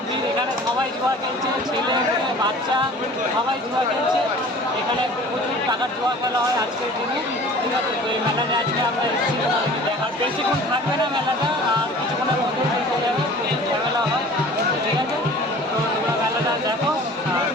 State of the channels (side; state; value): both; normal; correlation 0.45